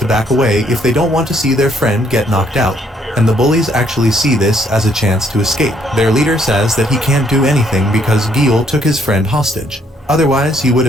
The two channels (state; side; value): normal; both; correlation 0.68